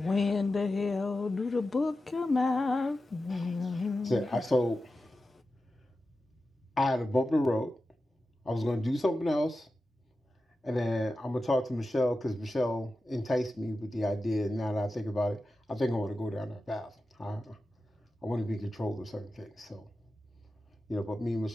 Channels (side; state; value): both; normal; correlation 0.92